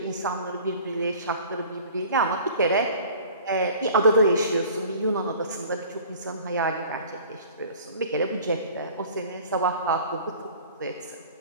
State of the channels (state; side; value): inverted; both; correlation -0.45